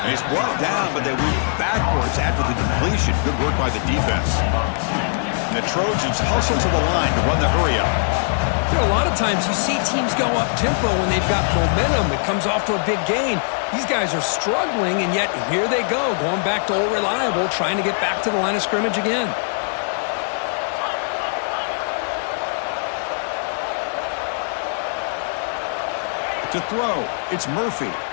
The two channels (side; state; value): right; silent; digital silence